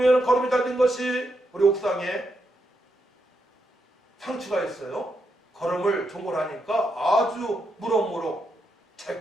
거름이 잘 된 것이 우리 옥상에 상추가 있어요. 거름을 종골하니까 아주 무럭무럭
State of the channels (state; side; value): normal; both; correlation 0.82